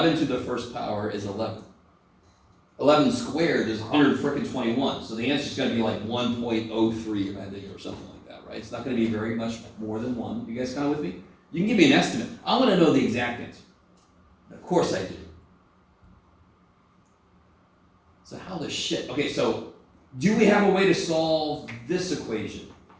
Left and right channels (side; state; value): both; identical; correlation 1.00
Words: to the 1st power is 11. 11 squared is 121. So the answer is going to be like 1.03, I think, or something like that, right? It's not going to be very much more than 1. You guys kind of with me? You can give me an estimate. I want to know the exact answer. Of course I do. So how the shit? Okay, so do we have a way to solve this equation?